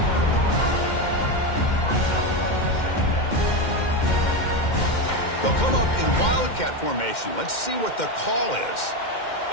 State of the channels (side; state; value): right; late; 2.1 ms